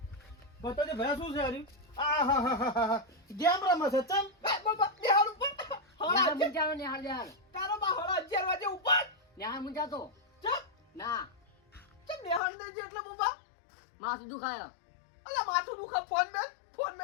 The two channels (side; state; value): right; drops out; at 12.4 s